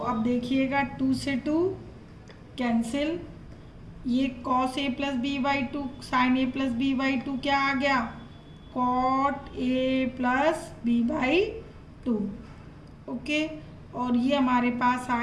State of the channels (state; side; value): identical; both; correlation 1.00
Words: देखिएगा 2 से 2 कैंसिल। ये cos A plus B by 2 sine A plus B by 2 क्या आ गया, cot A plus B by 2। Okay, और ये हमारे पास